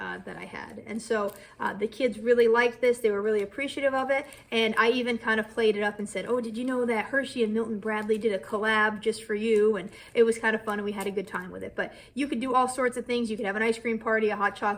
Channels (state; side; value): identical; both; correlation 1.00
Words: I had. And so the kids really liked this. They were really appreciative of it. And I even kind of played it up and said, oh, did you know that Hershey and Milton Bradley did a collab just for you? And it was kind of fun, and we had a good time with it. But you could do all sorts of things. You could have an ice cream party, a hot